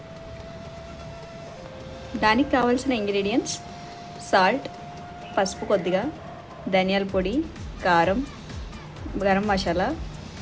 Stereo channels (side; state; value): both; identical; correlation 1.00